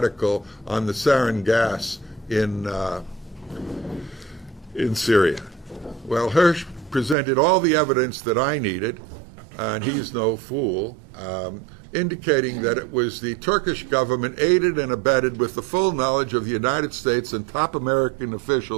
on the sarin gas in Syria? Well, Hersh presented all the evidence that I needed, and he's no fool, indicating that it was the Turkish government, aided and abetted with the full knowledge of the United States and top American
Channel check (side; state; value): left; drops out; at 7.2 s